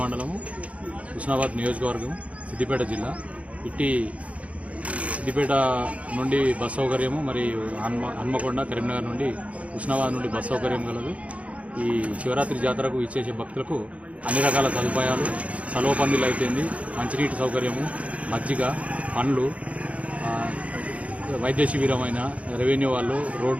మండలము, హుస్నాబాద్ నియోజకవర్గం, సిద్దిపేట జిల్లా. ఇట్టి సిద్దిపేట నుండి బస్ సౌకర్యము, మరియు హన్మకొండ, కరీంనగర్ నుండి, హుస్నాబాద్ నుండి బస్ సౌకర్యం కలదు. ఈ శివరాత్రి జాతరకు ఇచ్చేసే భక్తులకు అన్ని రకాల సదుపాయాలు, సలవ పందిలు అయిపోయింది, మంచినీటి సౌకర్యము, మజ్జిగ, పండ్లు, వైద్య శిబిరమైన, రెవెన్యూ వాళ్ళు,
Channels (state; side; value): late; left; 0.065 ms